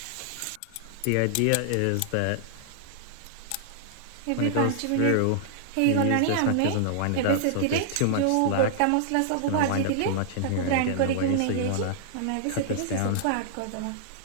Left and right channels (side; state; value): both; different; correlation -0.01